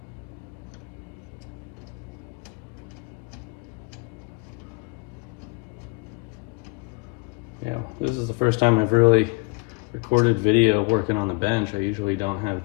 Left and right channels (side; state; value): right; quieter; 30.0 dB